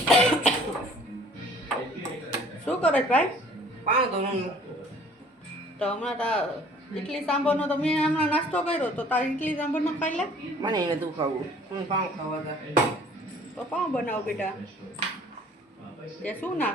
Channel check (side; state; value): both; normal; correlation 0.53